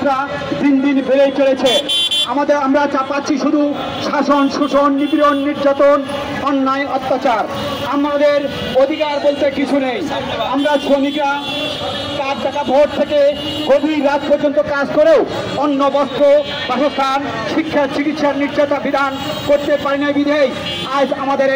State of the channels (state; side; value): identical; both; correlation 1.00